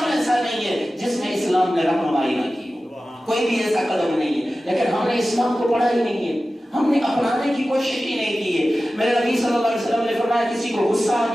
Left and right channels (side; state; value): both; normal; correlation 0.95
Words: ایسا نہیں ہے جس میں اسلام نے رہنمائی نہ کی ہو، کوئی بھی ایسا قدم نہیں ہے، لیکن ہم نے اسلام کو پڑھا ہی نہیں ہے، ہم نے اپنانے کی کوشش ہی نہیں کی ہے۔ میرے نبی صلی اللہ علیہ وسلم نے فرمایا کسی کو غصہ آ